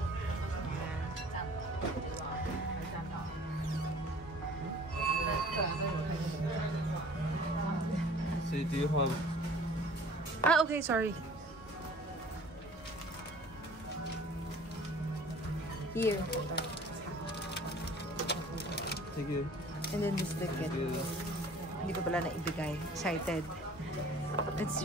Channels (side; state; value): both; normal; correlation 0.49